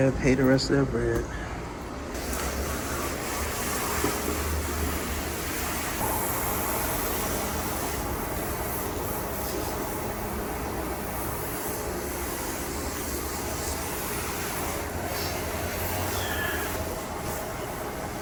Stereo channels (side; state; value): both; identical; correlation 1.00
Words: and pay the rest of that bread.